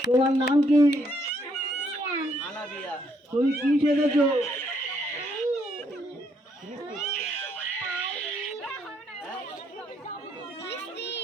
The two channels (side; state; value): both; normal; correlation 0.71